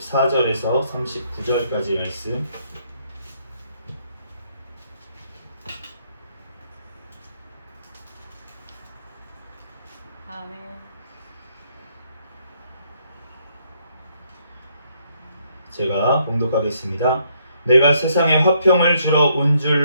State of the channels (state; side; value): inverted; both; correlation -0.71